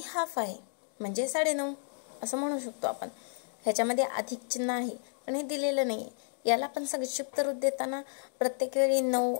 हाफ आहे म्हणजे 9.5 असं म्हणू शकतो आपण. ह्याच्यामध्ये अधिक चिन्ह आहे पण हे दिलेलं नाही. याला पण संक्षिप्त रूप देताना प्रत्येक वेळी 9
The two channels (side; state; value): right; silent; digital silence